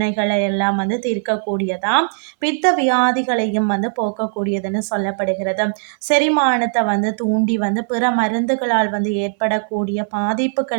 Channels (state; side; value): silent; left; 59 dB below the other